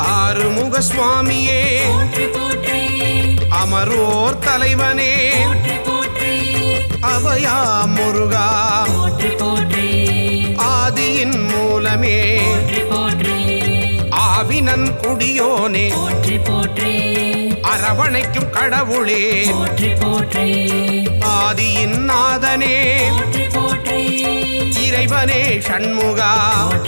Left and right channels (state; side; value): inverted; both; correlation -1.00